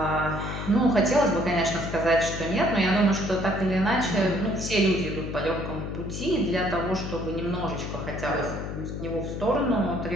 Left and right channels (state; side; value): noise; left; hum, 6 dB below the sound